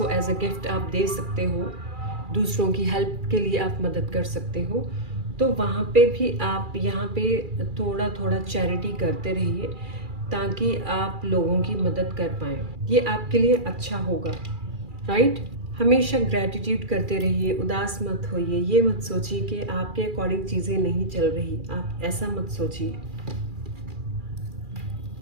एज अ गिफ्ट आप दे सकते हो, दूसरों की हेल्प के लिए आप मदद कर सकते हो, तो वहाँ पे भी आप यहाँ पे थोड़ा थोड़ा चैरिटी करते रहिए ताकि आप लोगों की मदद कर पाएँ। ये आपके लिए अच्छा होगा, राइट? हमेशा ग्रैटिट्यूड करते रहिए, उदास मत होइए। ये मत सोचिए कि आपके अकॉर्डिंग चीज़ें नहीं चल रही, आप ऐसा मत सोचिए।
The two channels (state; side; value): late; left; 2.4 ms